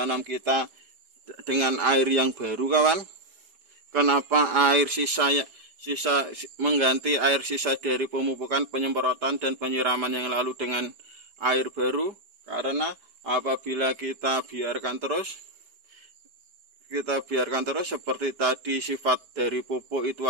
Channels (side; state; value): left; late; 4.6 ms